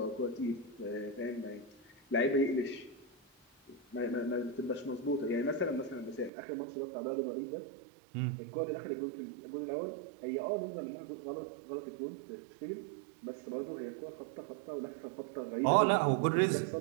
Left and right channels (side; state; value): left; drops out; at 6.3 s